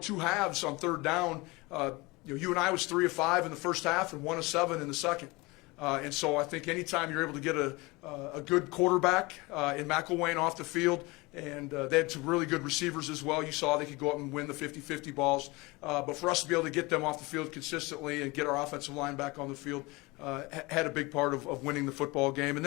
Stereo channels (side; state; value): right; quieter; 23.8 dB